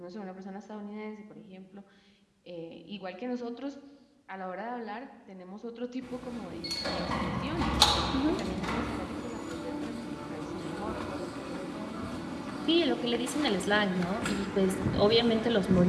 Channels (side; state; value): both; identical; correlation 1.00